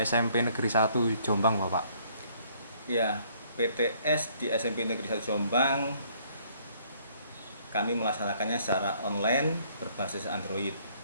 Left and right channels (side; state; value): both; inverted; correlation -0.64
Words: Negeri 1 Jombang, Bapak? Ya, PTS di SMP Negeri 1 Jombang kami melaksanakannya secara online berbasis Android.